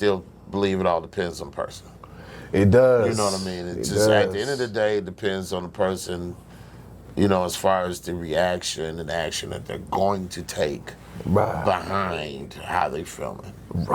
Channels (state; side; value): identical; both; correlation 1.00